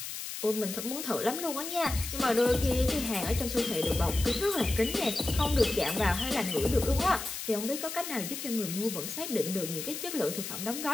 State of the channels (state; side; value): noise; left; hiss, 7 dB below the sound